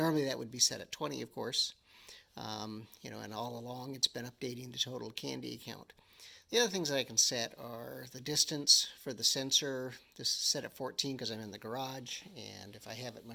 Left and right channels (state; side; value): identical; both; correlation 1.00